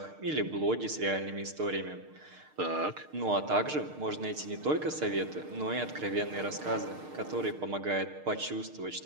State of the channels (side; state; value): left; late; 6.6 ms